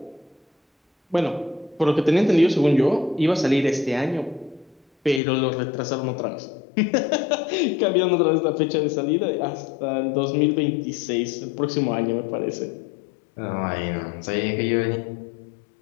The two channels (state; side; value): drops out; right; at 5.2 s